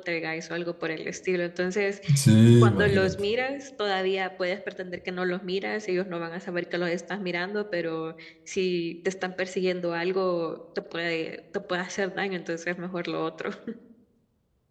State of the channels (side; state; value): both; identical; correlation 1.00